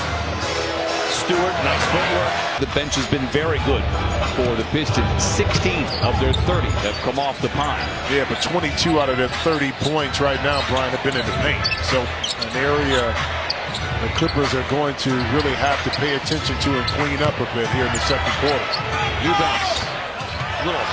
Stewart, nice footwork. The bench has been very good for the Pistons. 16 of their 30 have come off the pine. Yeah, but 22 out of their 30 points right now, Brian, have been in the paint. So an area the Clippers are going to really have to pay attention to and clean up a bit here in the second quarter. Eubanks, little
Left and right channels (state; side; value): identical; both; correlation 1.00